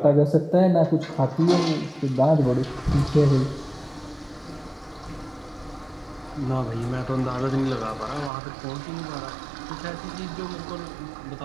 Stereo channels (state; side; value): drops out; left; at 8.3 s